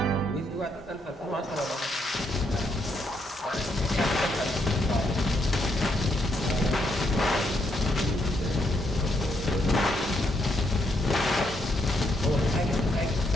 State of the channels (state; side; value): normal; both; correlation 0.76